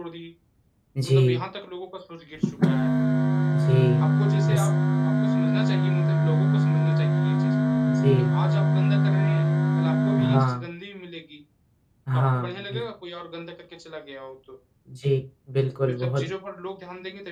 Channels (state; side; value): identical; both; correlation 1.00